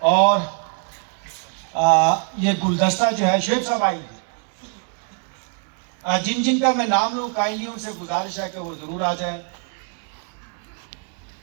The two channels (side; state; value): left; quieter; 39.2 dB